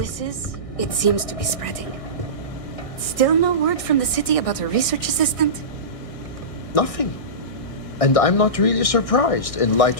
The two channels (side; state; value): right; late; 1.6 ms